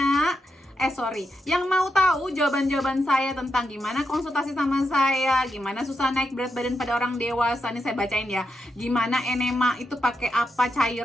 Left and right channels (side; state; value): both; normal; correlation 0.85